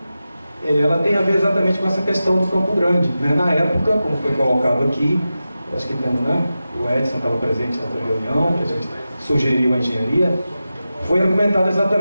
ela tem a ver exatamente com essa questão do Campo Grande. Na época, como foi colocado aqui, acho que o Edson estava presente na reunião, que a gente sugeriu a engenharia, foi argumentado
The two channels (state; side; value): inverted; both; correlation -0.93